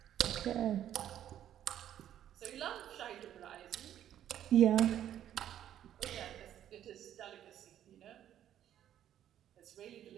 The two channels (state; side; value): quieter; left; 11.0 dB